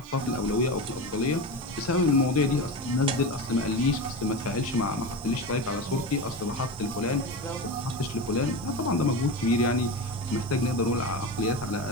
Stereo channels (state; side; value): noise; right; hiss, 25 dB below the sound